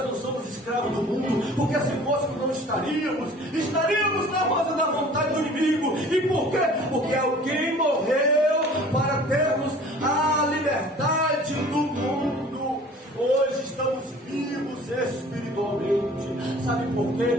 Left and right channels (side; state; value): both; normal; correlation 0.47